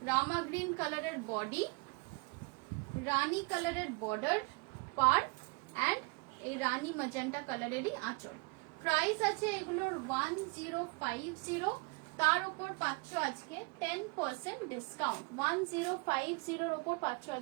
রামা গ্রিন কালারের বডি, রানী কালারের বর্ডার পার, এন্ড এই রানী ম্যাজেন্টা কালারেরই আঁচল। প্রাইস আছে এগুলোর 1050, তার উপর পাচ্ছ আজকে 10% ডিসকাউন্ট। 1050 এর উপর পাচ্ছ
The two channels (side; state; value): left; quieter; 30.7 dB